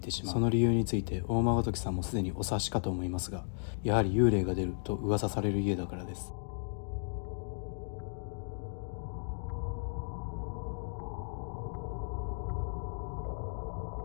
てしまう。その理由について大間時さんもすでにお察しかと思いますが、やはり幽霊が出ると噂される家だからです。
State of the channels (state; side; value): silent; right; digital silence